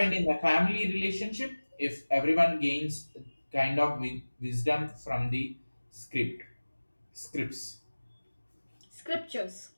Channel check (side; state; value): both; inverted; correlation -1.00